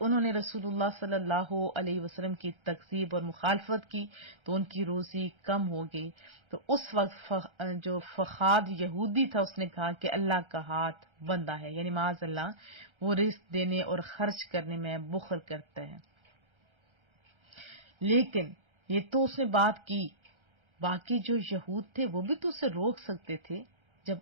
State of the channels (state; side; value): late; left; 1.3 ms